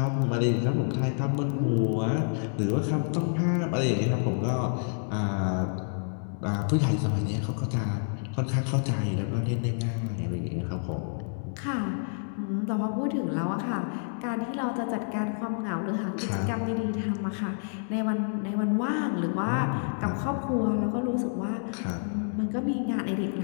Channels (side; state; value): right; silent; digital silence